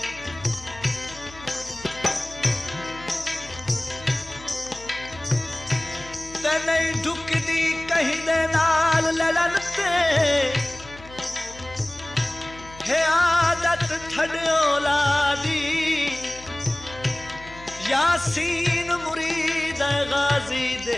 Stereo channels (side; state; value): left; noise; hum, 19 dB below the sound